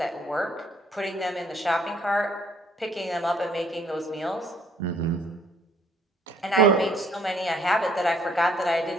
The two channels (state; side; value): normal; both; correlation 0.63